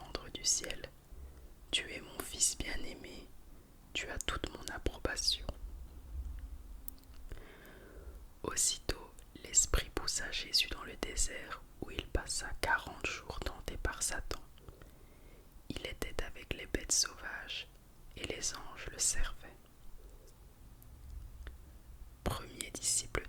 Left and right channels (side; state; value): both; identical; correlation 1.00